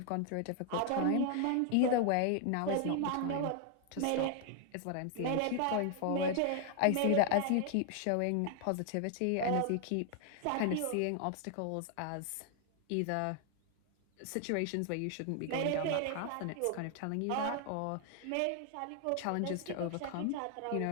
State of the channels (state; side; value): different; both; correlation 0.00